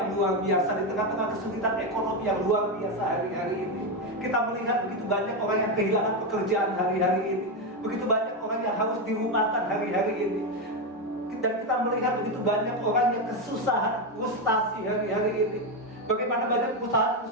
luar biasa, di tengah-tengah kesulitan ekonomi yang luar biasa hari-hari ini, kita melihat begitu banyak orang yang kehilangan pekerjaan hari-hari ini, begitu banyak orang yang harus dirumahkan hari-hari ini, dan kita melihat begitu banyak orang yang kesusahan, frustasi hari-hari ini. Bagaimana banyak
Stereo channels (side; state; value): both; normal; correlation 0.09